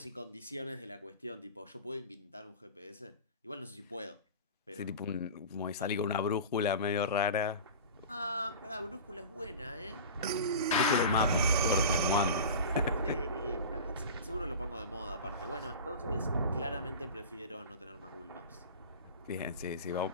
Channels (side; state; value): both; inverted; correlation -0.34